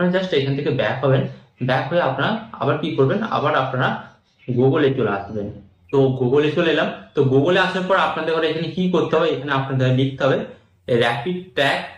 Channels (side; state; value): both; identical; correlation 1.00